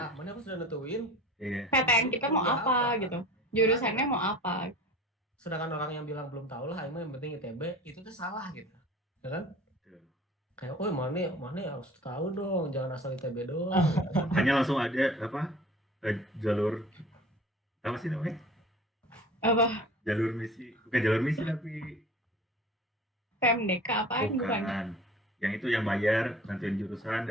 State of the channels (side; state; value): both; normal; correlation 0.42